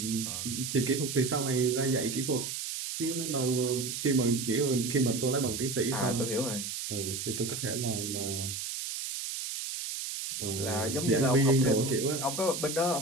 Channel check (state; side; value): noise; right; hiss, 5 dB below the sound